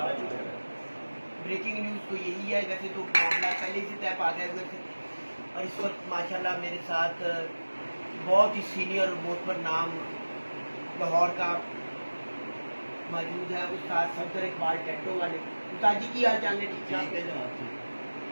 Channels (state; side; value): inverted; both; correlation -1.00